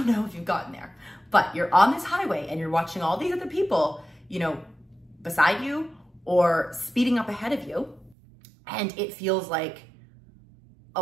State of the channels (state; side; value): drops out; left; at 8.2 s